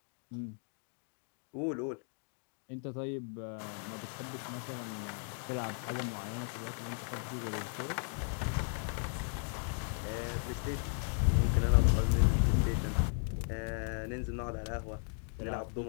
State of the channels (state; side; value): silent; right; 54 dB below the other